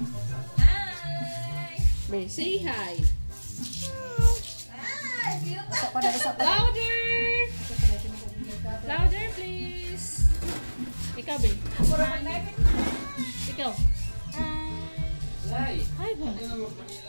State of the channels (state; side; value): inverted; both; correlation -1.00